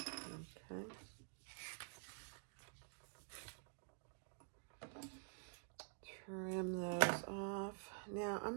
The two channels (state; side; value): silent; left; digital silence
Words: Trim those off. Now I'm